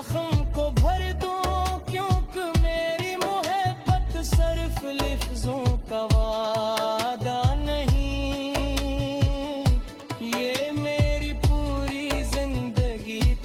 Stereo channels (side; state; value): both; identical; correlation 1.00